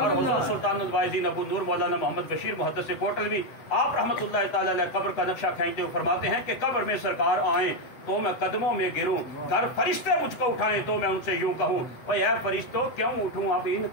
حضور سلطان الواعظین ابو نور مولانا محمد بشیر محدث کوٹل بھی آپ رحمۃ اللہ تعالی علیہ قبر کا نقشہ کھینچتے ہوئے فرماتے ہیں کہ قبر میں سرکار آئیں تو میں قدموں میں گروں، گر فرشتے مجھ کو اٹھائیں تو میں ان سے یوں کہوں اے فرشتوں کیوں اٹھوں اب ان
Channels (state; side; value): late; right; 7.9 ms